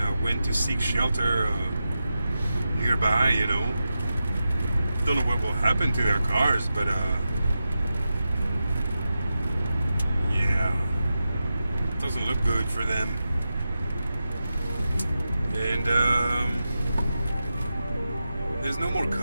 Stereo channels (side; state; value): both; inverted; correlation -0.91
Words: went to seek shelter nearby, you know. don't know what will happen to their cars, but yeah, doesn't look good for them. And there's no more